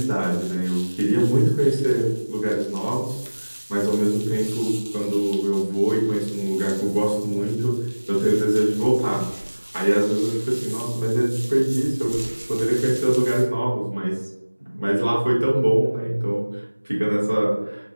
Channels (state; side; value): inverted; both; correlation -1.00